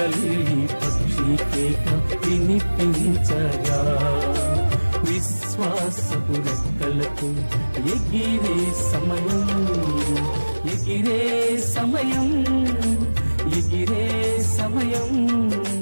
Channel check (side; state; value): both; inverted; correlation -1.00